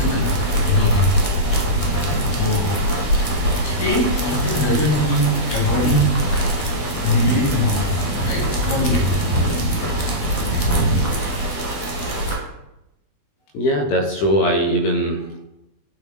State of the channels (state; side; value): late; right; 20 ms